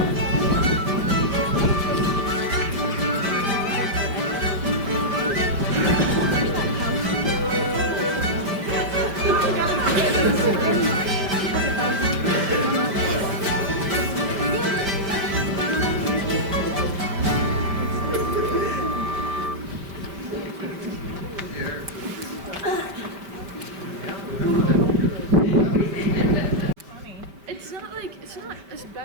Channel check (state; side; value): late; left; 5.1 ms